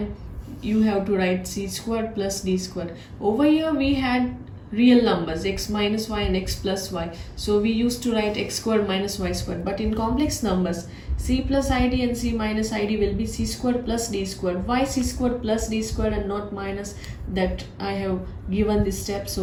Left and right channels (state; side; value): identical; both; correlation 1.00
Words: you have to write c squared plus d squared. Over here we had real numbers x minus y and x plus y, so we used to write x squared minus y squared. But in complex numbers, c plus id and c minus id will be c squared plus d squared. Why c squared plus d squared and not minus? That I have given the steps